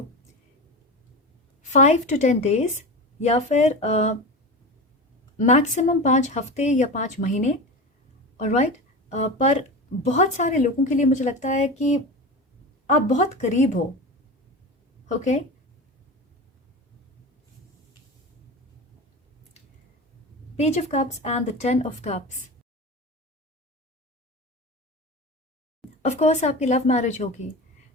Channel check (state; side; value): normal; both; correlation 0.27